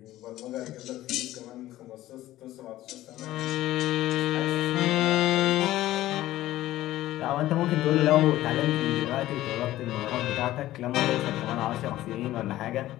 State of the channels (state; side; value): quieter; right; 15.1 dB